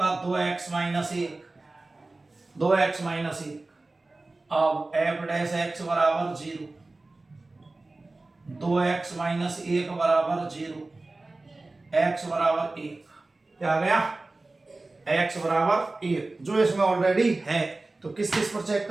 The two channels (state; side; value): quieter; left; 3.2 dB